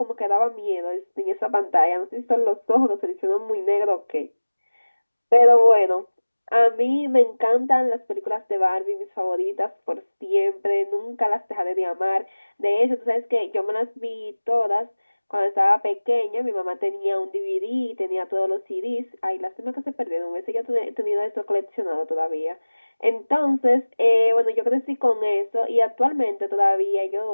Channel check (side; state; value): both; inverted; correlation -1.00